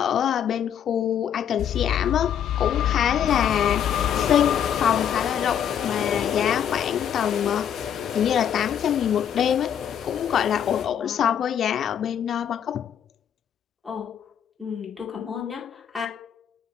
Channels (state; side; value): quieter; right; 9.1 dB